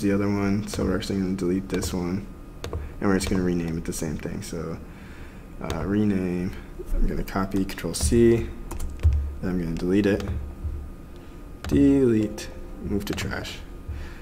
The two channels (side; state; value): both; identical; correlation 1.00